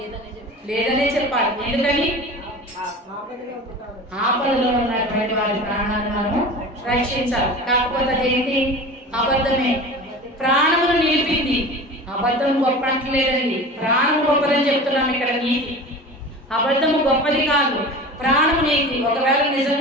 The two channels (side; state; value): both; normal; correlation 0.35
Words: లేదనే చెప్పాలి. ఎందుకని? ఆపదలో ఉన్నటువంటి వారి ప్రాణాలను మనము రక్షించాలి. కాకపోతే అదేంటి? అబద్ధమే. ప్రాణమును నిలిపింది. అబద్ధం గొప్ప అంటలేదండి, ప్రాణం గొప్పదని చెప్తున్నాం ఇక్కడ. నీతి, అబద్ధము గొప్పది కాదు, ప్రాణము నీతి. ఒకవేళ